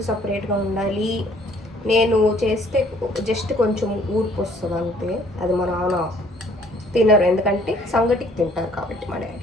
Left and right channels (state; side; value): normal; both; correlation 0.59